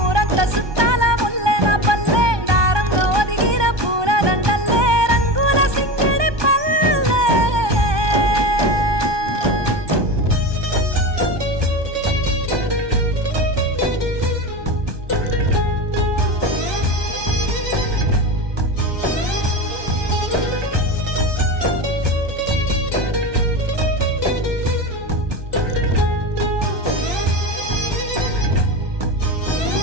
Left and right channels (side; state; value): left; late; 1.2 ms